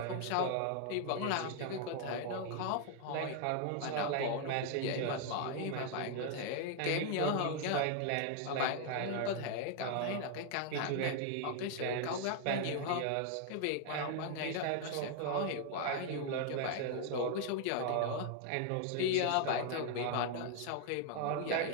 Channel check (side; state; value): both; different; correlation 0.00